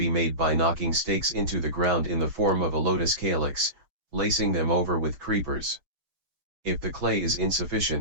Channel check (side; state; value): left; late; 6.3 ms